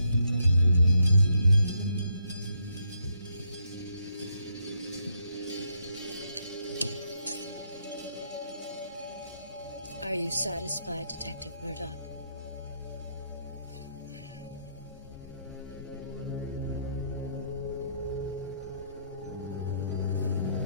Are you satisfied, Detective Murdoch?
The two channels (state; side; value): inverted; both; correlation -0.75